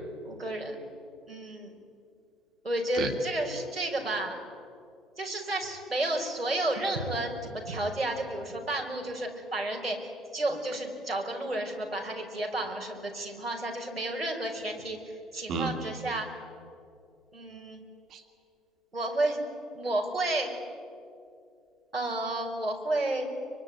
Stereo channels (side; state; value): both; normal; correlation 0.68